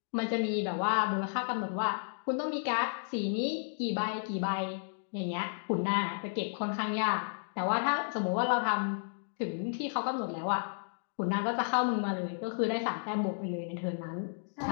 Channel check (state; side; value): silent; right; digital silence